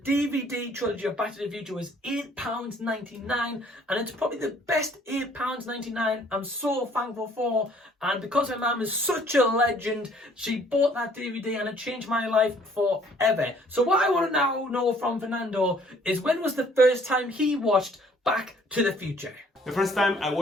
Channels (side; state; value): both; normal; correlation 0.59